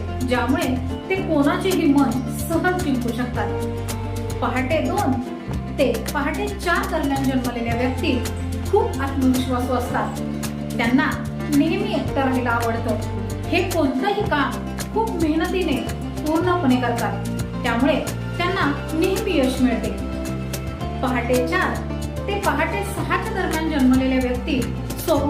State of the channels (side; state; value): both; identical; correlation 1.00